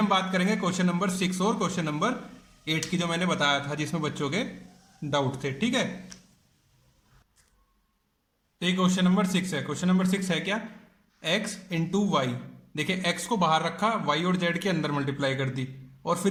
बात करेंगे क्वेश्चन नंबर 6 और क्वेश्चन नंबर 8 की, जो मैंने बताया था जिसमें बच्चों के डाउट थे, ठीक है। तो ये क्वेश्चन नंबर 6 है। क्वेश्चन नंबर 6 है क्या, x इंटू वाई। देखिए x को बाहर रखा, y और z के अंदर मल्टीप्लाई कर दी, और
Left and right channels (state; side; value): identical; both; correlation 1.00